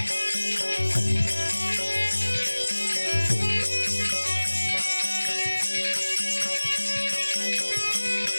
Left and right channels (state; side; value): inverted; both; correlation -1.00